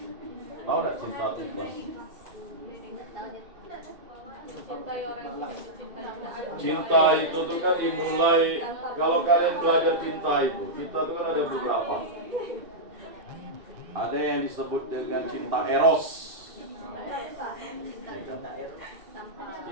Tahu enggak cinta itu ikhlas? Cinta itu tuh kan dimulai, kalau kalian belajar cinta itu, cinta itu kan ada beberapa. Ada yang disebut dengan cinta eros.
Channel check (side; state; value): left; late; 2.6 ms